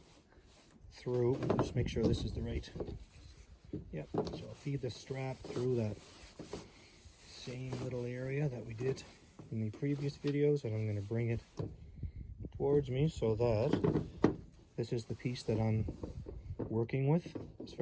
through. Just make sure this is the right. Yep. So I'll feed the strap through that same little area that we did in the previous videos, and I'm going to bring it towards me so that this is the piece that I'm working with as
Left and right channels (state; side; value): identical; both; correlation 1.00